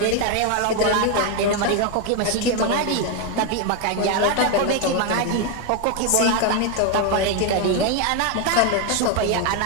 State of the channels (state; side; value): different; both; correlation 0.01